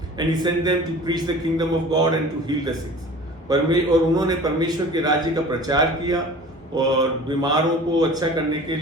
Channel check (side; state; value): both; normal; correlation 0.42